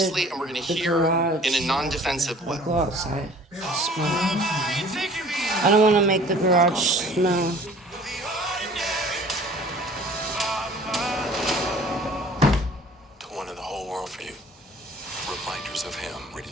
and we're going to the hear garage. in a non-defensive way. Go outside. Smell. I don't want to make the garage smell. One in the whole world for you. Reminders of him.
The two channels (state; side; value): normal; both; correlation 0.50